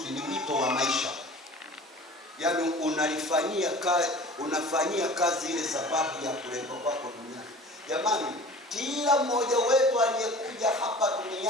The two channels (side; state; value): both; normal; correlation 0.42